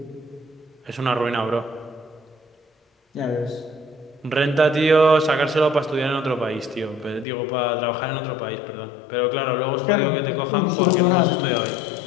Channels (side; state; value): right; drops out; at 7.2 s